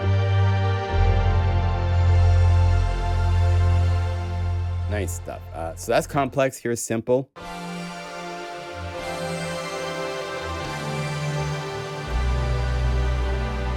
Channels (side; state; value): both; identical; correlation 1.00